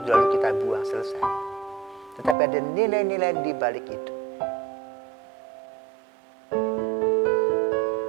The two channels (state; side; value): drops out; left; at 2.4 s